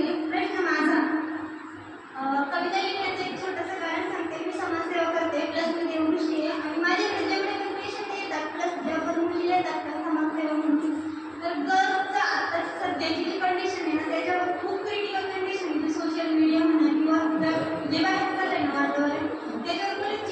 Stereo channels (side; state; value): both; identical; correlation 1.00